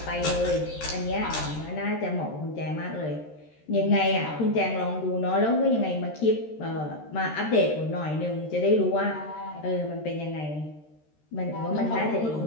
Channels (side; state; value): right; late; 13 ms